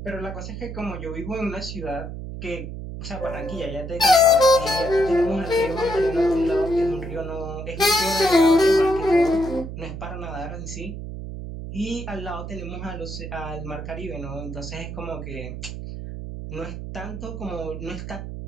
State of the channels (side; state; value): right; noise; hum, 8 dB below the sound